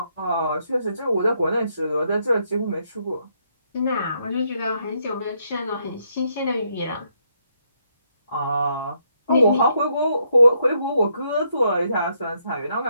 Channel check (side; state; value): both; inverted; correlation -0.75